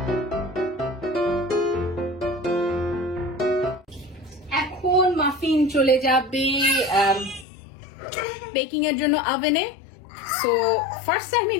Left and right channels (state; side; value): drops out; right; at 7.5 s